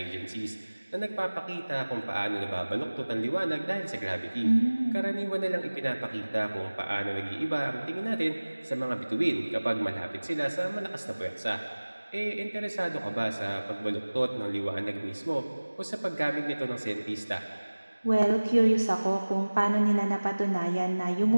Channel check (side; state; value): both; inverted; correlation -1.00